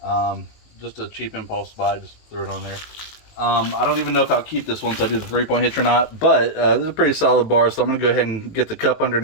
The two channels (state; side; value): late; right; 19 ms